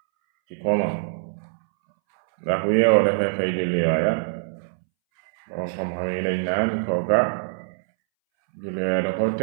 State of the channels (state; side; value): silent; left; 63 dB below the other